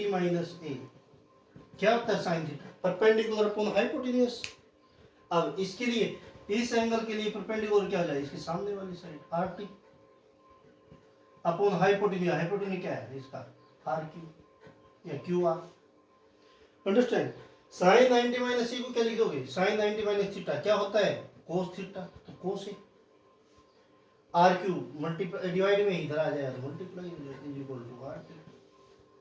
माइनस A क्या होता है, sine theta perpendicular upon hypotenuse. अब इसके लिए, इस एंगल के लिए परपेंडिकुलर क्या हो जाएगा, इसके सामने वाली side RT upon hypotenuse. Hypotenuse क्या है इसका, RQ या QR। Understand? Sine 90 minus C को क्या लिखोगे, साइन 90 माइनस थीटा क्या होता है, कोस थीटा, तो cos A। R Q multiply divide में इधर आ जाएगा तो multiply is equal to R Q.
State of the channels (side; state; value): both; identical; correlation 1.00